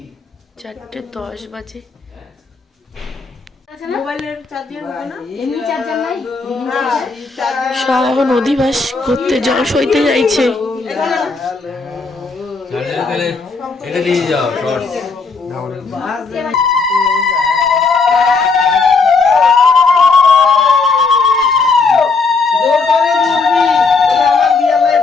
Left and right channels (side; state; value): right; quieter; 4.4 dB